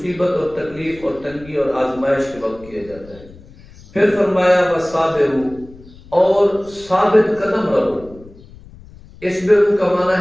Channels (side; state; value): left; noise; rumble, 21 dB below the sound